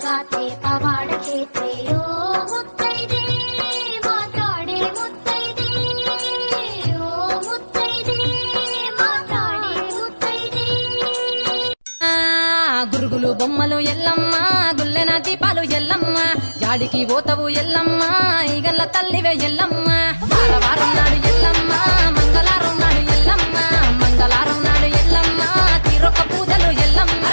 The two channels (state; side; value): inverted; both; correlation -1.00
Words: ಗಾತೆ ಪವಾಡ ಕ್ಷೇತ್ರೆಯೋ ಮುತ್ತೈದೆ ಮಾತಾಡೆ ಮುತ್ತೈದೆ ಓ ಮುತ್ತೈದೆ ಮಾತಾಡೆ ಮುತ್ತೈದೆ గురుగులు బొమ్మలు ఎల్లమ్మ గుల్లెన దీపాలు ఎల్లమ్మ జాడికి పోతవు ఎల్లమ్మ ఈగల్ల తల్లివే ఎల్లమ్మ వారం నాడు